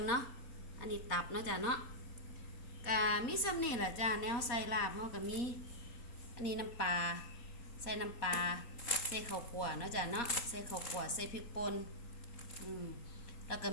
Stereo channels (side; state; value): right; late; 4.1 ms